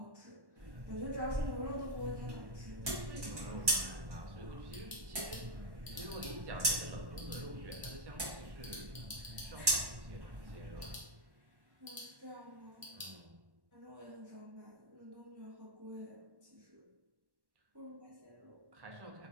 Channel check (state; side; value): late; left; 1.1 ms